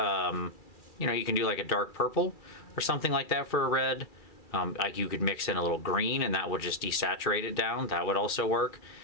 you can do like a dark purple or something like that for a red. Like you could mix in a little green and that would just desaturate it down. That would also work.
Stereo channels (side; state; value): right; late; 2.3 ms